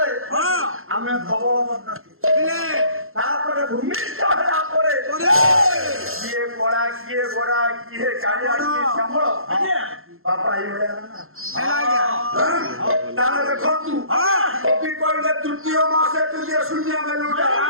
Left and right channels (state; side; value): late; left; 0.61 ms